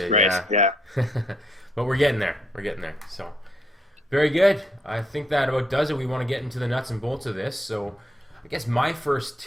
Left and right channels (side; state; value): both; normal; correlation 0.74